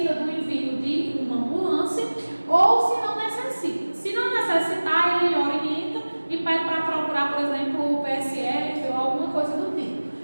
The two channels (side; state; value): both; inverted; correlation -1.00